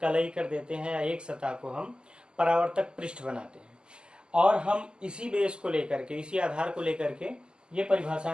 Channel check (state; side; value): late; left; 0.047 ms